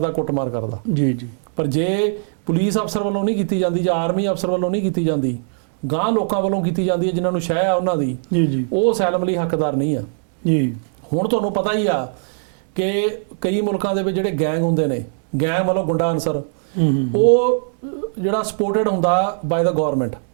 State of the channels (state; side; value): silent; left; digital silence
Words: ਕੁੱਟਮਾਰ ਕਰਦਾ। ਜੀ। ਪਰ ਜੇ ਪੁਲਿਸ ਅਫਸਰ ਵੱਲੋਂ ਨਹੀਂ ਕੀਤੀ ਜਾਂਦੀ ਜਾਂ ਆਰਮੀ ਅਫਸਰ ਵੱਲੋਂ ਨਹੀਂ ਕੀਤੀ ਜਾਂਦੀ, ਗਾਂ ਲੋਕਾਂ ਵੱਲੋਂ ਕੀਤੀ ਜਾਂਦੀ ਹੈ ਜਿਨ੍ਹਾਂ ਨੂੰ ਸ਼ਹਿ ਆ ਉਹਨਾਂ ਦੀ, ਉਹ ਅਸਾਈਲਮ ਲਈ ਹੱਕਦਾਰ ਨਹੀਂ ਆ। ਹੁਣ ਤੁਹਾਨੂੰ ਪਤਾ ਹੀ ਆ ਕਿ ਕਈ ਮੁਲਕਾਂ ਦੇ ਵਿੱਚ ਜਿਹੜੇ ਗੈਂਗ ਹੁੰਦੇ ਨੇ, ਗੈਂਗ ਵੱਲੋਂ ਗੁੰਡਾ ਅਨਸਰ, ਉਹ ਜਿਹੜਾ ਸਪੋਰਟਡ ਹੁੰਦਾ ਬਾਏ ਦਾ ਗਵਰਨਮੈਂਟ,